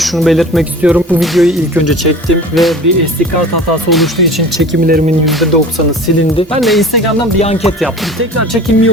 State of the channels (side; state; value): both; normal; correlation 0.40